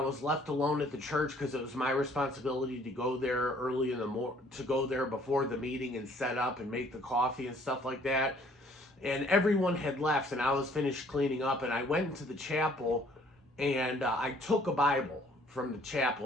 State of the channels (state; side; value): normal; both; correlation 0.59